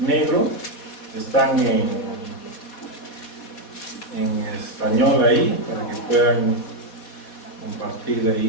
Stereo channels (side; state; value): right; late; 4.2 ms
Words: están en español ahí, para que puedan compartir